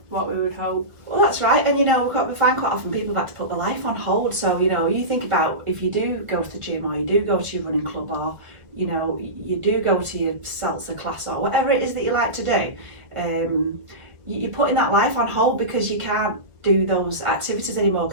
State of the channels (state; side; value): late; left; 1.4 ms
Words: we would hope. Well, that's right, and we find quite often people have had to put their life on hold. So you think about if you do go to the gym, or you do go to your running club, or you do go to your salsa class, or whatever it is that you like to do, you're putting that life on hold because you can't do those activities anymore